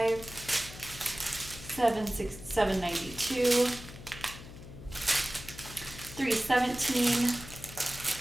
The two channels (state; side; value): noise; left; hum, 15 dB below the sound